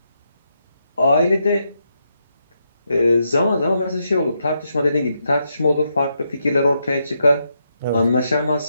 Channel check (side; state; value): both; inverted; correlation -0.81